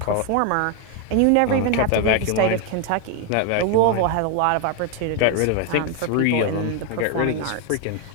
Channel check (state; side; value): different; both; correlation 0.01